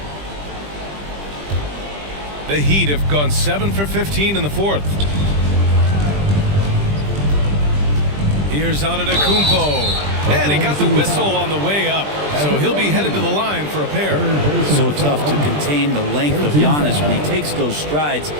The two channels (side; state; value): left; late; 20 ms